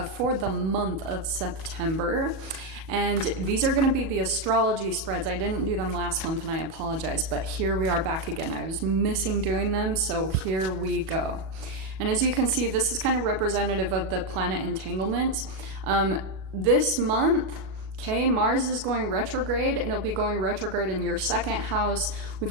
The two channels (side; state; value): left; late; 37 ms